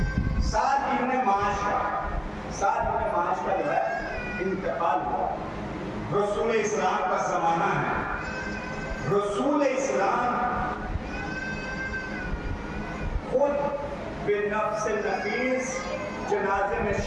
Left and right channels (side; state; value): both; identical; correlation 1.00